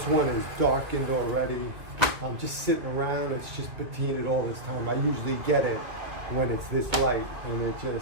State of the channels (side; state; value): left; late; 2.0 ms